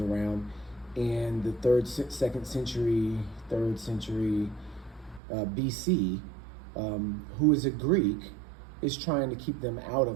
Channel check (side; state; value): left; drops out; at 5.2 s